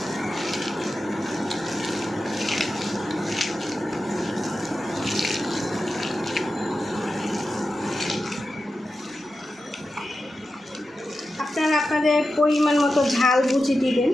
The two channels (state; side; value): normal; both; correlation 0.91